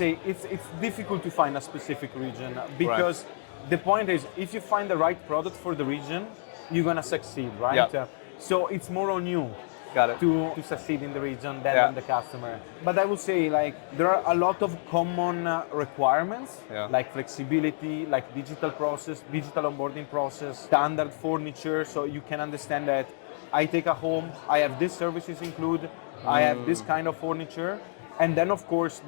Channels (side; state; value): right; silent; digital silence